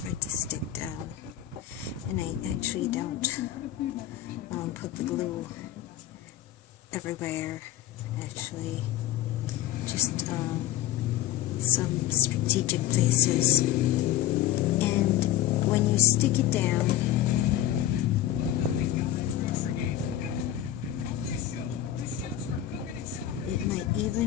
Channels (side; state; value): right; quieter; 12.6 dB